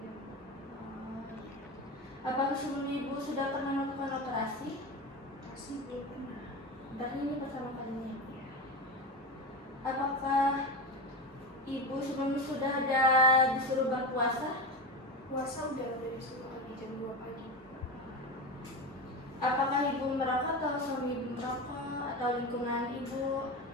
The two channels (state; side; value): normal; both; correlation 0.22